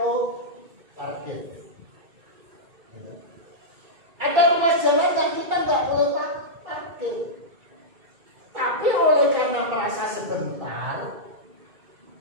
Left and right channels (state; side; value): late; left; 2.4 ms